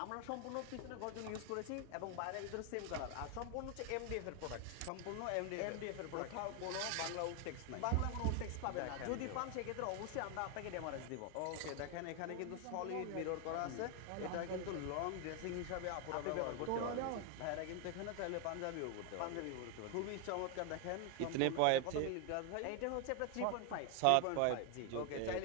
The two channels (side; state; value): both; different; correlation 0.00